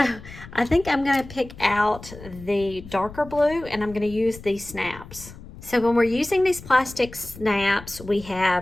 I think I'm going to pick out the darker blue, and I'm going to use these snaps. So when we're using these plastic snaps, we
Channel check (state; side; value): noise; left; rumble, 16 dB below the sound